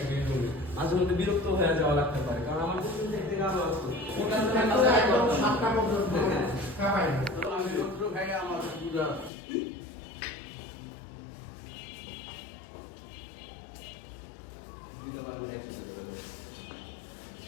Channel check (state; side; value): drops out; right; at 9.3 s